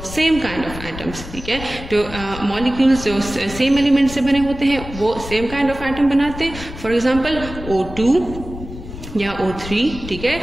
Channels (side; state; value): left; noise; rumble, 11 dB below the sound